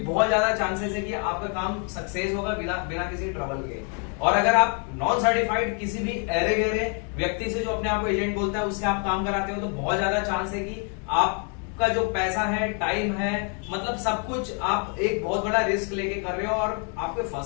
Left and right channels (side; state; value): right; quieter; 39.5 dB